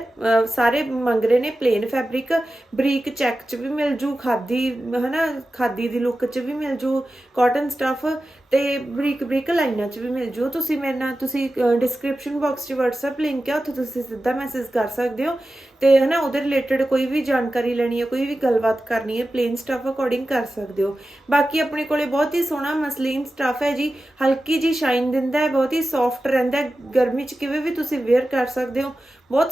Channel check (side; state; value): both; normal; correlation 0.93